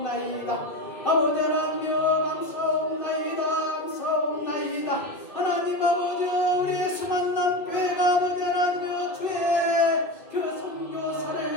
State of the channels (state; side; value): late; right; 2.6 ms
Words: 아버지 하나님 감사옵나이다. 감사옵나이다. 하나님 아버지 우리의 수만남 교회가 아버지 하나님 주의 그